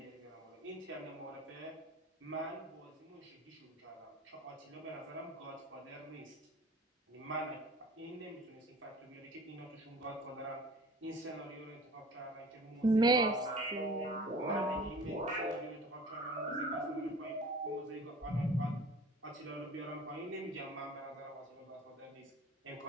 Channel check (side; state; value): both; normal; correlation 0.44